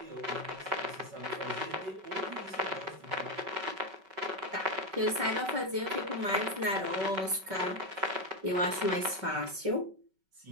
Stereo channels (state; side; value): late; left; 5.3 ms